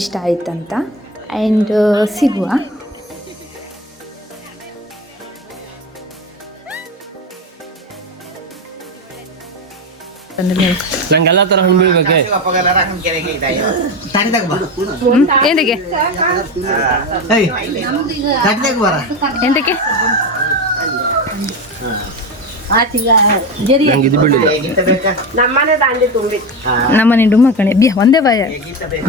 ಇಷ್ಟ ಆಯ್ತಂತ. ಆ್ಯಂಡ್ ಸಿಗುವ. ನಂಗೆಲ್ಲ ತರ ಹಣ್ಣು ಬೀಳ್ಬೇಕೆ. ಎಂತಕ್ಕೆ ಎಂತಕ್ಕೆ ನಂಗೆ ಇದು ಬೀಳಿಲ್ಲ. ನಮ್ಮನೆ ಡುಮ್ಮ ಕಣೆ ಬಿಯ ಒಂದೇ ಬಾಯ.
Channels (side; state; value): both; normal; correlation 0.20